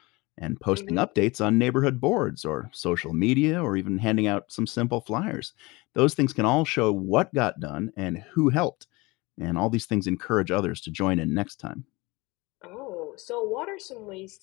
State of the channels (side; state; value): right; quieter; 23.6 dB